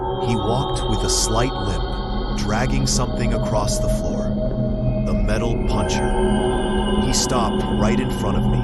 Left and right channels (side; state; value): both; identical; correlation 1.00